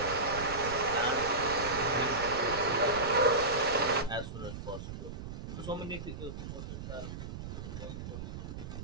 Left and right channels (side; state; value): right; noise; rumble, 8 dB below the sound